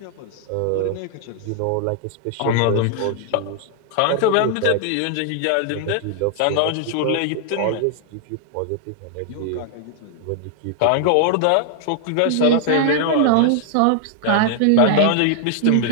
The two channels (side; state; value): both; different; correlation -0.01